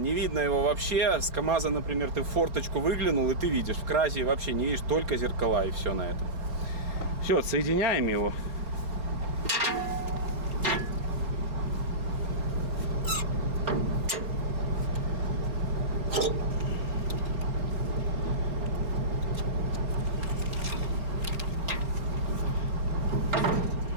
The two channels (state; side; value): late; left; 4.2 ms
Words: видно его вообще. С КамАЗа, например, ты в форточку выглянул, и ты видишь. В Кразе вообще не видишь, только зеркала, и все на этом. Все, отсоединяем его.